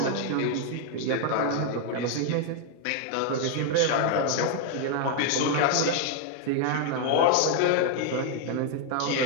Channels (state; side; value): different; both; correlation 0.00